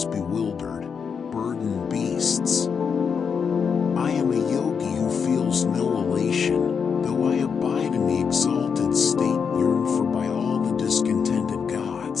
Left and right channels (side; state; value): right; quieter; 6.3 dB